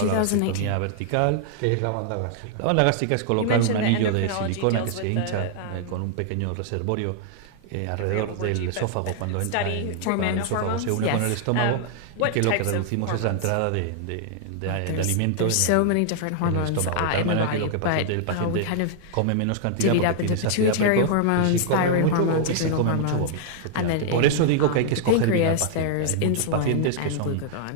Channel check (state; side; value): different; both; correlation -0.01